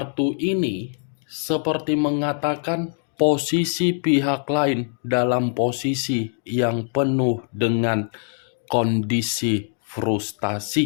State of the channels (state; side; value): silent; right; 59 dB below the other